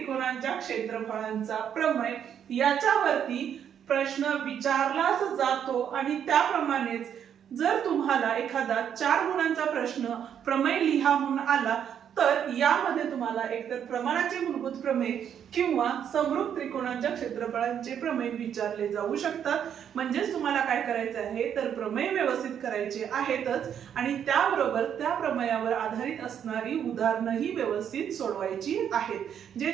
क्षेत्रफळांचा प्रमेय. याच्यावरती प्रश्न विचारलाच जातो, आणि त्याप्रमाणेच जर तुम्हाला एखादा 4 गुणांचा प्रश्न प्रमेय लिहा म्हणून आला तर यामध्ये तुम्हाला एकतर प्रमाणाचे मूलभूत प्रमेय किंवा समरूप त्रिकोणांच्या क्षेत्रफळांचे प्रमेय विचारले जाऊ शकतात. म्हणजेच तुम्हाला काय करायचं आहे तर प्रमेय व्यवस्थित करायचे आहेतच, आणि त्याबरोबर त्या प्रमेयावर आधारित असणारी उदाहरणंही व्यवस्थित सोडवायची आहेत. जे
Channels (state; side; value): quieter; left; 8.8 dB